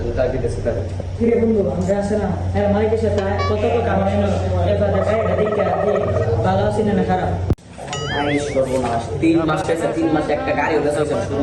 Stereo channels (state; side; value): identical; both; correlation 1.00